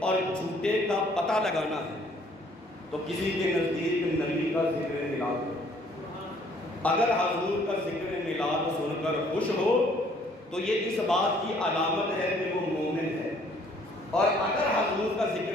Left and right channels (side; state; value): both; normal; correlation 0.61